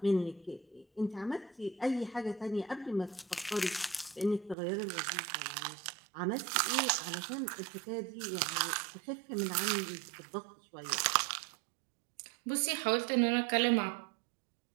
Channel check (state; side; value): drops out; left; at 4.5 s